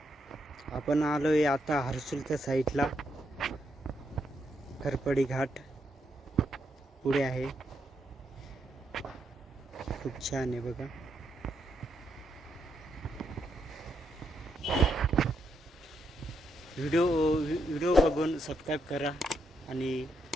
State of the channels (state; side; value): normal; both; correlation 0.79